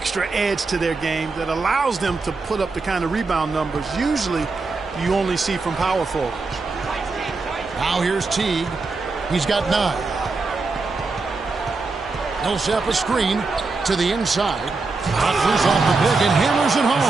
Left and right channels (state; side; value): quieter; left; 3.9 dB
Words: edge to their game that allows them to put up the kind of rebound numbers usually you only see from power forwards. Now here's Teague. He's got 9. Millsap a screen to the inside. Offers off the pick and hammers it